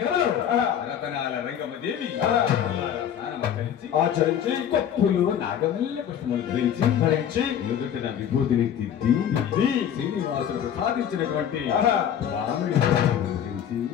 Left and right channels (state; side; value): quieter; right; 9.3 dB